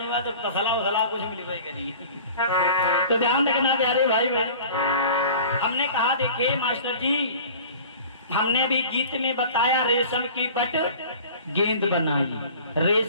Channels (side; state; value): both; inverted; correlation -0.43